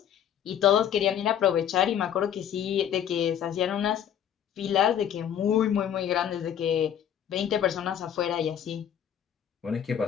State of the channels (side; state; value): right; quieter; 9.5 dB